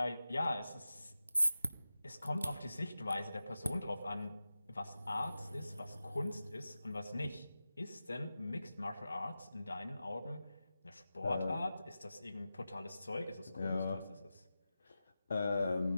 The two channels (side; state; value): both; inverted; correlation -0.93